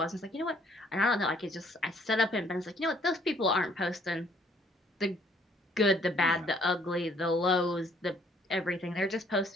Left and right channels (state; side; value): normal; both; correlation 0.63